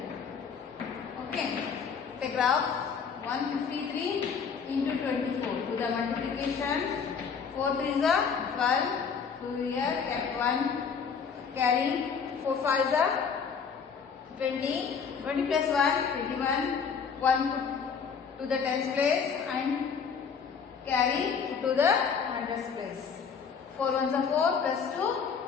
Okay. The graph 153 into 24. Do the multiplication. 4 3 is 12. 2 here kept 1. Carry 4 5 is 20. 20 plus 1 21. 1 put to the tens place and carry to the hundreds place. 4 1s are 4 plus 2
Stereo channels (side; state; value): right; quieter; 6.2 dB